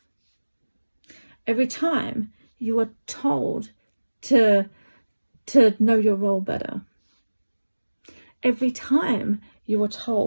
every time you are told to know your role better, every time you are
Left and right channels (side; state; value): both; inverted; correlation -1.00